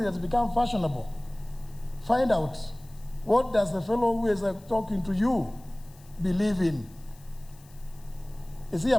has become fashionable. Find out, what does the fellow who is talking to you believe in? Is he a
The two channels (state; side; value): noise; left; hiss, 26 dB below the sound